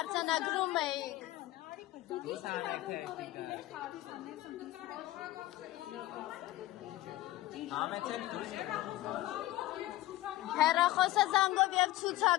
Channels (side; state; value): right; quieter; 16.6 dB